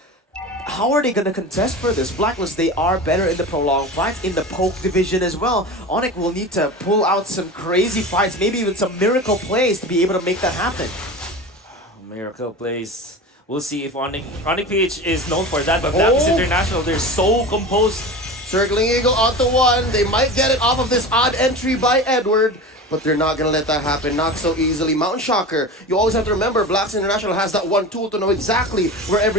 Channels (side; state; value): both; normal; correlation 0.31